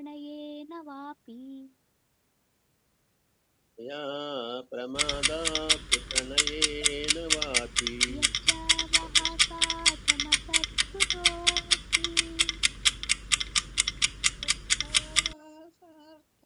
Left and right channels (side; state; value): both; identical; correlation 1.00